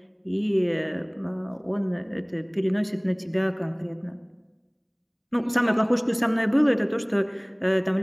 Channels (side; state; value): both; identical; correlation 1.00